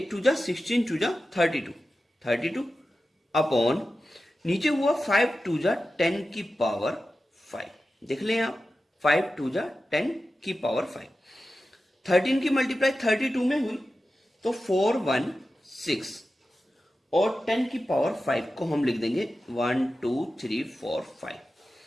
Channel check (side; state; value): both; normal; correlation 0.93